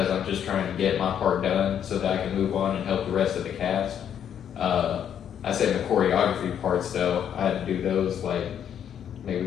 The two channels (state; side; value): quieter; right; 9.1 dB